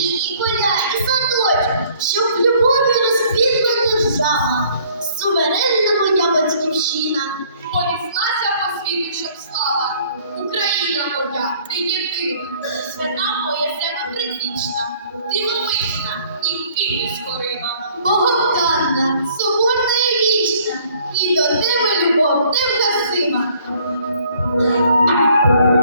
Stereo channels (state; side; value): inverted; both; correlation -0.59